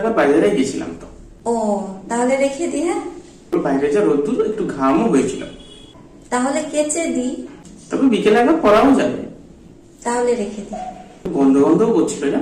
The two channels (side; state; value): both; identical; correlation 1.00